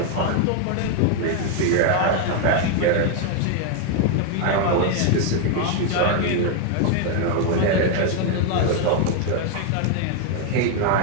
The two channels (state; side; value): different; both; correlation 0.01